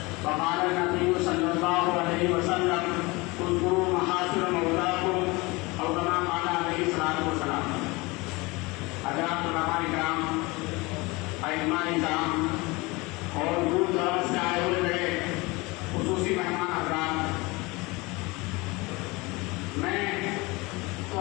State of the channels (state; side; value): quieter; right; 24.1 dB